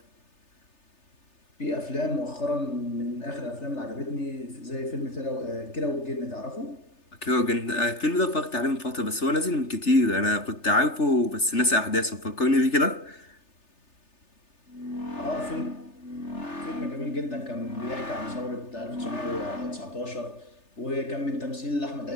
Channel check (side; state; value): right; late; 3.3 ms